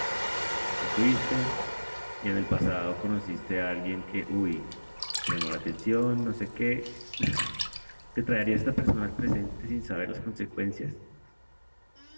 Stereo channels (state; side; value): inverted; both; correlation -1.00